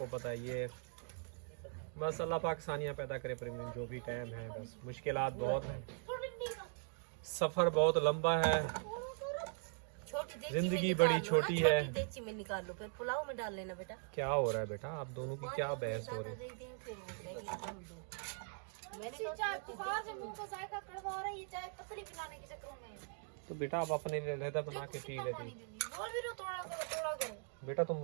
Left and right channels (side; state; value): left; silent; 51 dB below the other